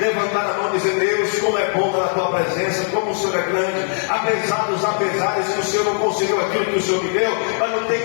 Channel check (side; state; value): right; silent; 57 dB below the other